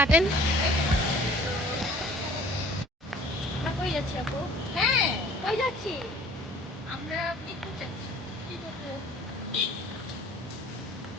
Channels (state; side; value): normal; both; correlation 0.51